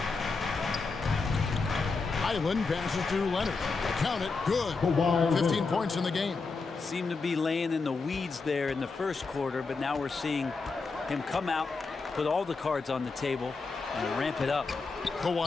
Highland passes to Leonard. Count it, good. 15 points in the game. Seemed to be laying in the weeds there in the first quarter, but now we're seeing him come out, put all the cards on the table, and ramp it up.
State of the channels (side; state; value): right; quieter; 4.3 dB